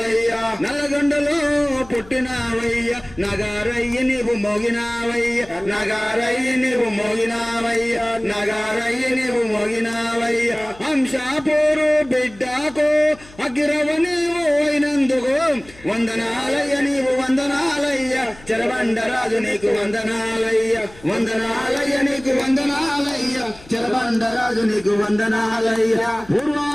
నల్లగొండలో పుట్టినావయ్య నగారయ్య నీవు మోగినావయ్య నగారయ్య నీవు మోగినావయ్య నగారయ్య నీవు మోగినావయ్య అంశాపూరు బిడ్డకు అగిరవ నీవు అయినందుకు వందనాలయ్య నీవు వందనాలయ్య చెరబండరాజు నీకు వందనాలయ్య వందనాలయ్య నీకు వందనాలయ్య చెరబండరాజు నీకు వందనాలయ్య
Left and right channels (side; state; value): left; noise; hum, 22 dB below the sound